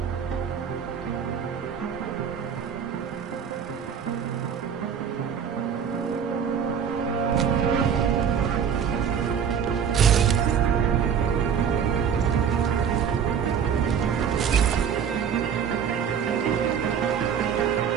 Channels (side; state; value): left; quieter; 7.6 dB